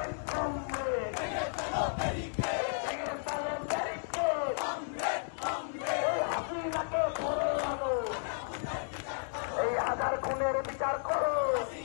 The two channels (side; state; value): right; silent; digital silence